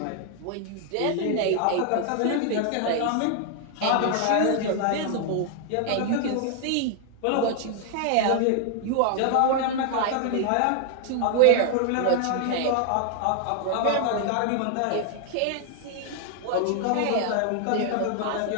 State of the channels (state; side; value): different; both; correlation 0.00